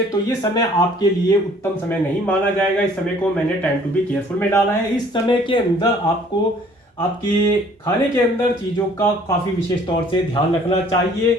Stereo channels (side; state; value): both; normal; correlation 0.56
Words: तो ये समय आपके लिए उत्तम समय नहीं माना जाएगा। इस समय को मैंने टाइम टू बी केयरफुल में डाला है। इस समय के अंदर आपको आपके खाने के अंदर चीज़ों का काफ़ी विशेष तौर से ध्यान रखना चाहिए।